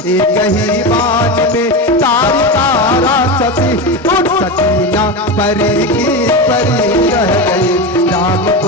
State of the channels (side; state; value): both; normal; correlation 0.19